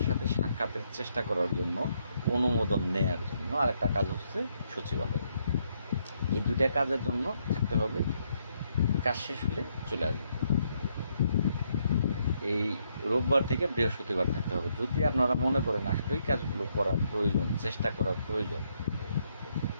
সাথে সাক্ষাতের চেষ্টা করার জন্য, অনুমোদন নেয়ার জন্য, আর একটা কাজ হচ্ছে সচিবালয়। এই দুইটা কাজের জন্য থাকতে হবে, কাজ শেষ হলে চলে আসবে। এই রোববার থেকে বৃহস্পতিবার থাকতে হবে। যদি আপনারা মনে করেন আসলেই কাজগুলো করার প্রয়োজন, চেষ্টা করার প্রয়োজন,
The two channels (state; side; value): inverted; both; correlation -0.74